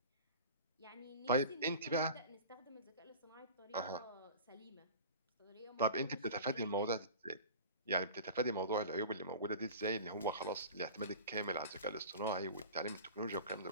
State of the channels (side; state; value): both; inverted; correlation -0.37